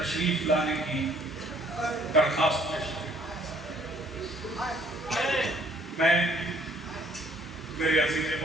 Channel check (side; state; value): both; normal; correlation 0.60